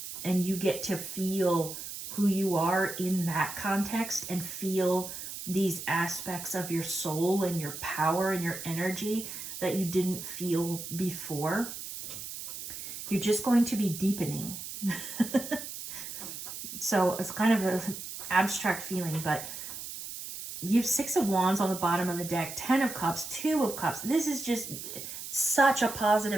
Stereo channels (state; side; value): noise; right; hiss, 9 dB below the sound